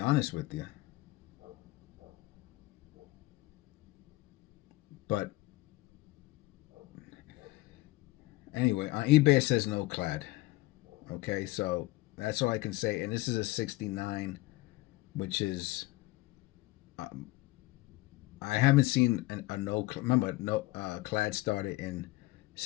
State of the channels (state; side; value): quieter; right; 20.1 dB